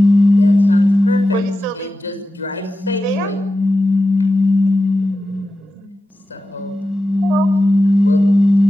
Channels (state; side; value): normal; both; correlation 0.92